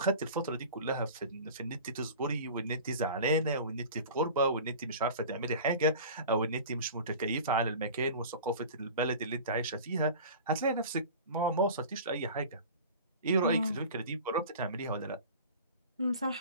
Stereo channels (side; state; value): both; inverted; correlation -0.38